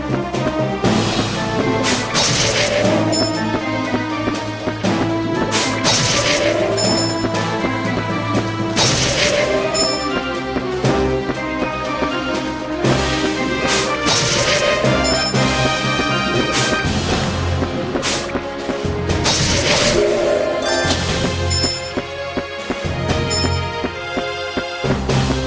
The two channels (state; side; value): identical; both; correlation 1.00